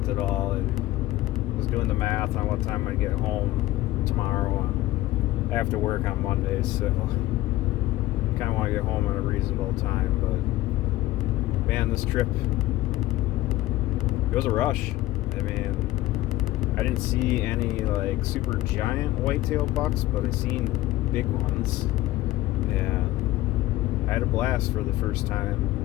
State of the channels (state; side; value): quieter; right; 16.5 dB